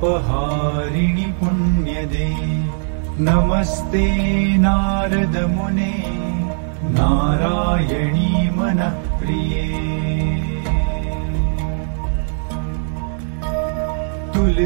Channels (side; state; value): left; silent; digital silence